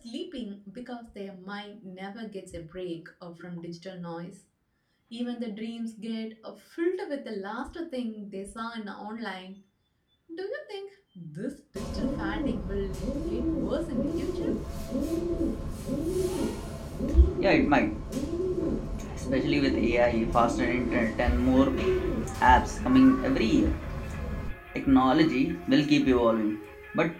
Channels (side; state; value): both; identical; correlation 1.00